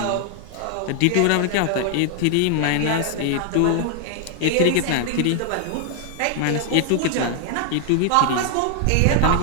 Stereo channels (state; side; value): different; both; correlation 0.00